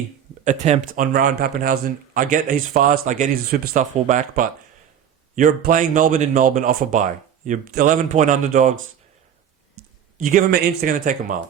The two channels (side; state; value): left; quieter; 9.0 dB